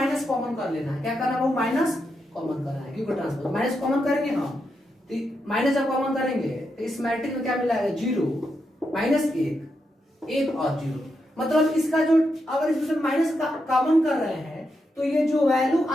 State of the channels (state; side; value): normal; both; correlation 0.84